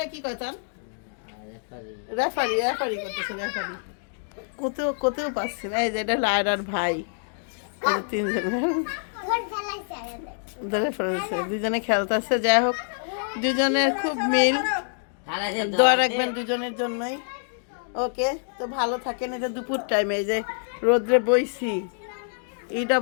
কি কয় তার রেফারি রেফারি করতেছে রেফারি। কোথাও কোথাও পাচ্ছি না। এই যে এটা লায়রার ভাই, এই যে তিনজন ঘর ফেলাইছে আরে ধরে ফেলেছে, দুজনে খেলতেছে। যাই হোক দুজনের খুব মিল, দোয়া রাখবেন দুজনের জন্যই। ওকে তো ভালো থাকেন। এটা দুপুর টাইমে এই যে রোদ্রে বইছি, এইটা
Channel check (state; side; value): silent; right; digital silence